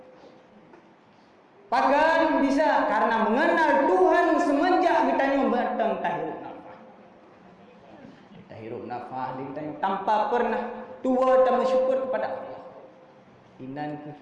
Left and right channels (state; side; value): identical; both; correlation 1.00